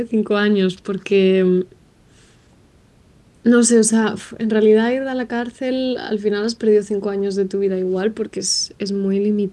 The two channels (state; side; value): identical; both; correlation 1.00